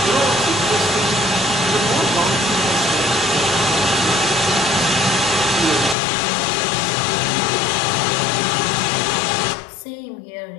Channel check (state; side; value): drops out; right; at 6.0 s